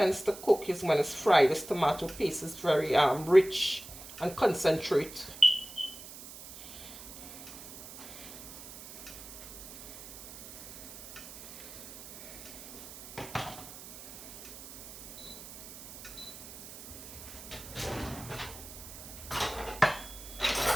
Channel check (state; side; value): noise; right; hiss, 14 dB below the sound